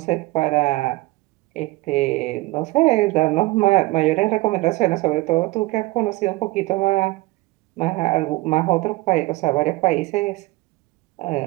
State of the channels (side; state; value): left; quieter; 20.7 dB